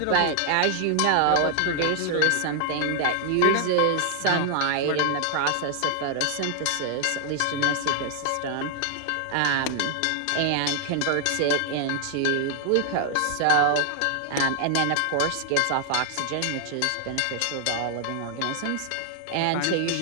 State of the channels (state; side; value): different; both; correlation 0.00